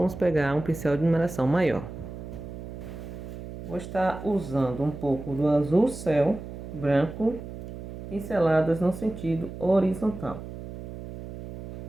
pegar um pincel de numeração maior. Vou estar usando um pouco do azul céu, branco, pinceladas no sentido horizontal.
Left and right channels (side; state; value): right; noise; hum, 10 dB below the sound